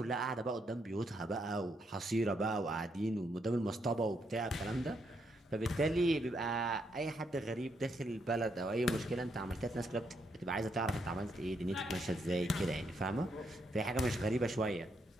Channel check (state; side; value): normal; both; correlation 0.77